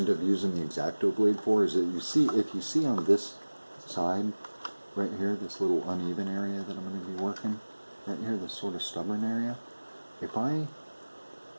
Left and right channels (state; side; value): inverted; both; correlation -1.00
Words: up using the X-Acto blade for is that if you see on this side, right here, this little uneven area that I'm going to be working, right here, this sort of stubborn area, if I